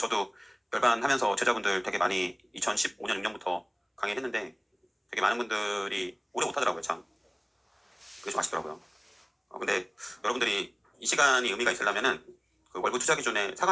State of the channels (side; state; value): both; identical; correlation 1.00